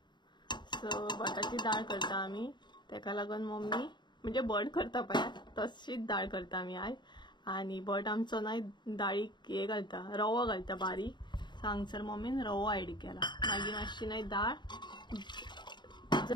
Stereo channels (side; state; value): right; late; 0.22 ms